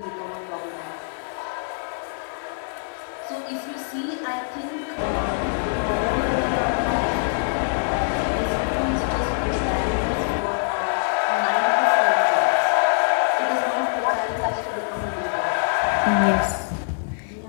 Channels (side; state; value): right; silent; digital silence